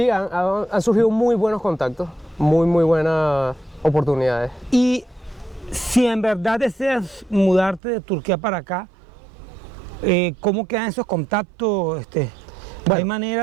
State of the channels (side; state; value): left; drops out; at 7.8 s